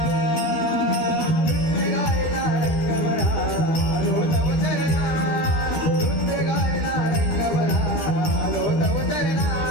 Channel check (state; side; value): late; right; 13 ms